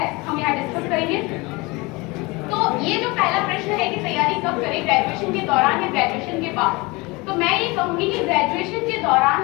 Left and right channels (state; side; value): quieter; right; 24.7 dB